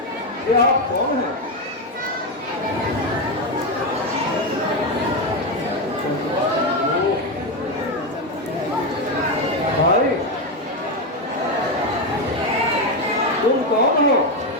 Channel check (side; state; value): both; normal; correlation 0.09